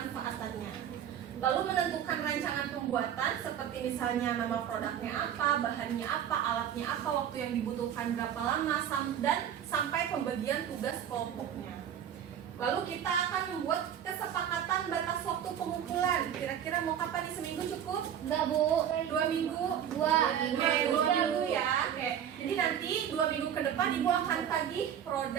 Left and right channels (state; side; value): quieter; left; 9.5 dB